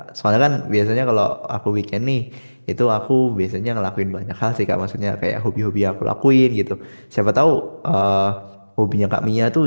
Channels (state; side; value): inverted; both; correlation -1.00